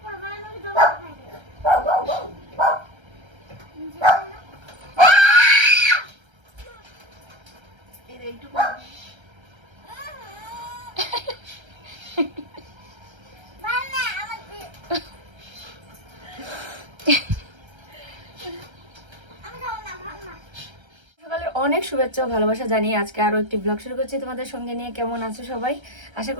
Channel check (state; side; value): late; left; 1.3 ms